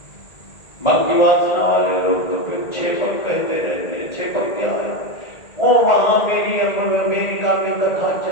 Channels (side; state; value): right; late; 1.8 ms